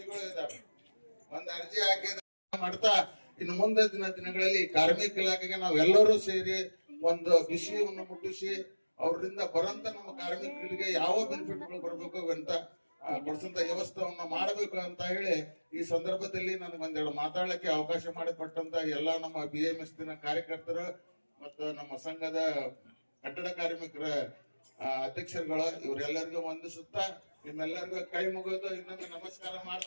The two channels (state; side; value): inverted; both; correlation -1.00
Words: ಇದಾವೆ. ಒಂದ್ ಅರ್ಜಿ ಹಾಕಿದ ಮಾಡ್ತಾ ಇನ್ನು ಮುಂದೆ ದಿನಗಳಲ್ಲಿ ಕಾರ್ಮಿಕ ಇಲಾಖೆಗೆ ನಾವೆಲ್ಲರೂ ಸೇರಿ ಒಂದು ವಿಷಯವನ್ನು ಮುಟ್ಟಿಸಿ ಅವರಿಂದ ಬರಂತ ನಮ್ಮ ಕಾರ್ಮಿಕರಿಗೆ ಯಾವ ಬೆನಿಫಿಟ್ಗಳು ಬರ್ಬೇಕು ಅಂತ ಕೊಡ್ಸಂತ ವ್ಯವಸ್ಥೆಯನ್ನ ಮಾಡಬೇಕು ಅಂತ ಹೇಳಿ ಈ ಸಂದರ್ಭದಲ್ಲಿ ನನಗೆ ಒಂದೆರಡು ಮಾತಾಡಲಿಕ್ಕೆ ಅವಕಾಶ ಮಾಡಿಕೊಟ್ಟಂತ ಎಲ್ಲ ನಮ್ಮ BMS ಕಾರ್ಯಕರ್ತರು ಮತ್ತು ನಮ್ಮ ಸಂಘದ ಕಟ್ಟಡ ಕಾರ್ಮಿಕರ ಅಧ್ಯಕ್ಷರುಗಳು ಇವರೆಲ್ಲರಿಗೂ ವಂದಿಸುತ್ತಾ ನಿಮ್ಮೆಲ್ಲರಿಗೂ ಕೈ ಮುಗಿದು ಇನ್ನೊಂದು ನಮಸ್ಕಾರ